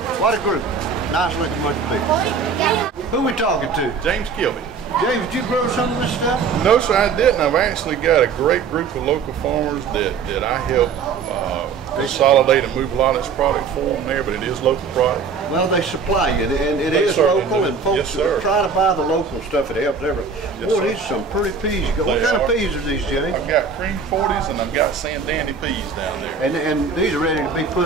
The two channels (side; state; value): left; quieter; 5.5 dB